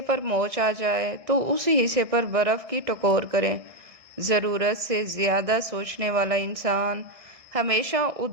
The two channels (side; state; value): left; late; 1.6 ms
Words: پر موچ آ جائے تو اس حصے پر برف کی ٹکور کریں۔ ضرورت سے زیادہ سوچنے والا انسان ہمیشہ